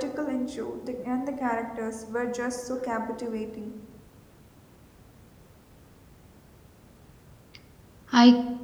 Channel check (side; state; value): both; identical; correlation 1.00